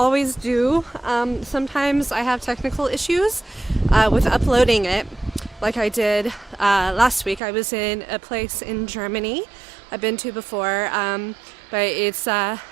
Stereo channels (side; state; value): left; drops out; at 7.4 s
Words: do. Sometimes I have technical issues with uploading it, like I did last week. I was in a place in Germany I've been to before, but it's out